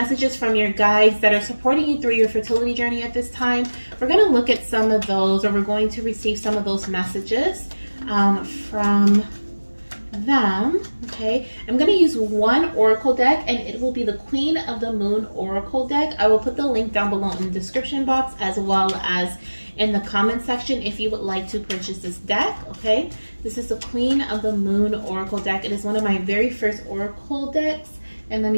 from your guides that are supporting you through your fertility journey at this time. We're going to look at some of those, or we're going to receive some of those messages from them, okay? I'm going to use one oracle deck, and it will be the Queen of the Moon oracle deck. I will put the link down below in the description box, as well as in the comment section if you would like to purchase this deck, okay? This is the Queen of the Moon oracle deck. It is one of my very first oracle decks. And let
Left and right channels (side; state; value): both; inverted; correlation -1.00